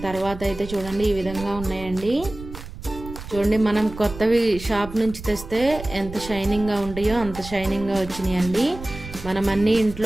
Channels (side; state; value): right; noise; rumble, 12 dB below the sound